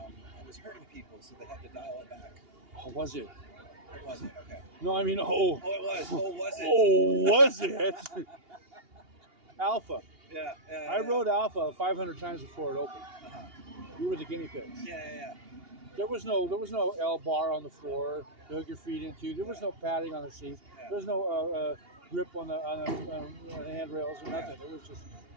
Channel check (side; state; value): left; late; 2.8 ms